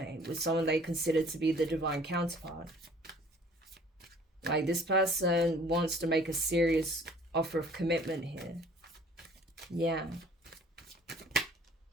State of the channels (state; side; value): normal; both; correlation 0.54